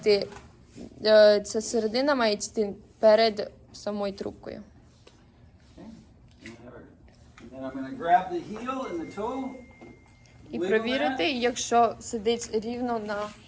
ця середина має йти перед самою трубкою. Okay? And then I'm going to grab the heel and the toe. І wiggle провірити, that. якщо сидить рівно на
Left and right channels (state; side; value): identical; both; correlation 1.00